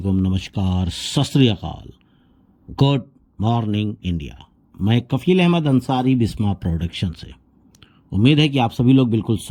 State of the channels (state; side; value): identical; both; correlation 1.00